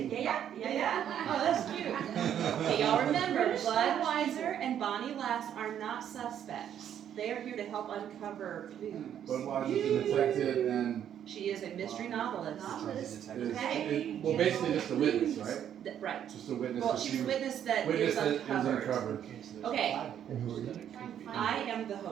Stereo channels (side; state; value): left; quieter; 9.8 dB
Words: yeah. Oh, that's cute. Okay, y'all remember, Budweiser and Bonnie Lass are not suspects. They are here to help uncover clues. Budweiser's a detective and She is a mystery novelist. well, basically just a witness, right? Right. Just a witness. Well, that she's a she- witness that witness is that is uncovered. uncovered. Okay, And who are you? I am the